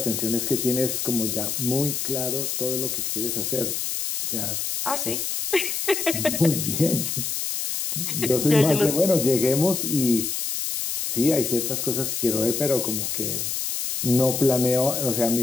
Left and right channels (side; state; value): left; noise; hiss, 2 dB below the sound